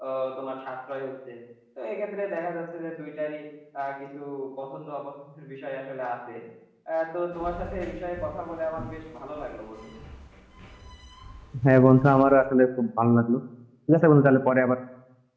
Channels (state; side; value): identical; both; correlation 1.00